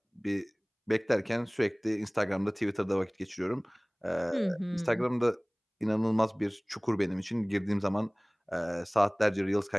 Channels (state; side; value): identical; both; correlation 1.00